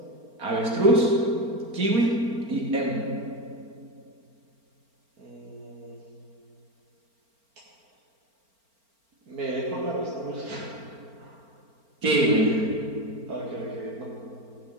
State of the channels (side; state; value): left; late; 4.4 ms